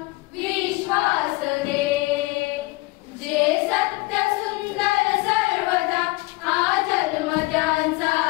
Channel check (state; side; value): quieter; right; 22.8 dB